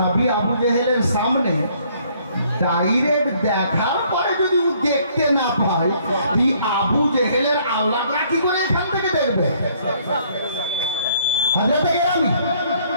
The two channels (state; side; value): inverted; both; correlation -0.63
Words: আবু জেহেলের সামনে ডাইরেক্ট দেখার পরে যদি ও দেখতে না পায়, এই আবু জেহেলের আওলাদরা কি করে এখান থেকে দেখবে? হযরতে গিরামি,